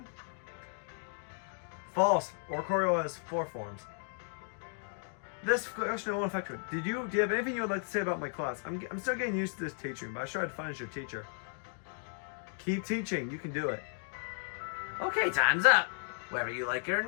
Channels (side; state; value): right; silent; 55 dB below the other